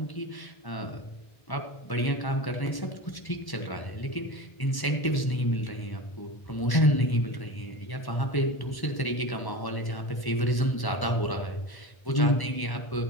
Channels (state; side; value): late; right; 1.1 ms